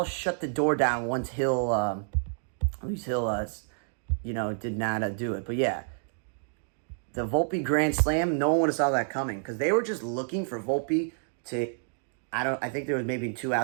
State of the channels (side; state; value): left; silent; digital silence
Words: shut the door down once Luis Hill did not do it. But yeah, the Volpe grand slam, no one would have saw that coming because they were just looking for Volpe to, I think there was maybe 2